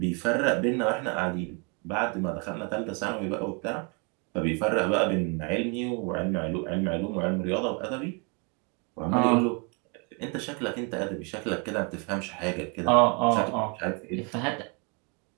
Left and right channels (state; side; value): quieter; left; 34.2 dB